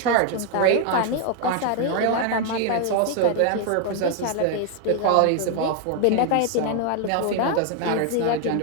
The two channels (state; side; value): different; both; correlation 0.01